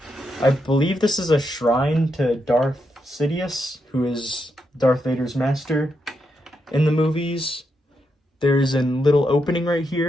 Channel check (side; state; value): both; normal; correlation 0.83